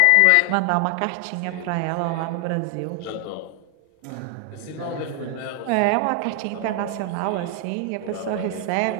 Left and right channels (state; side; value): different; both; correlation 0.00